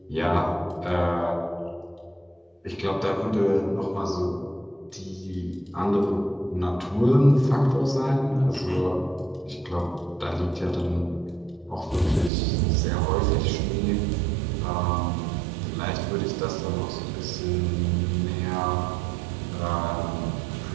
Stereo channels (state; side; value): drops out; left; at 12.3 s